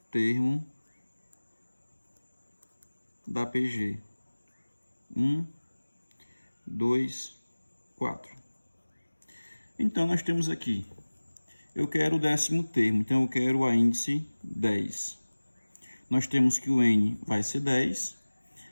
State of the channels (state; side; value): inverted; both; correlation -1.00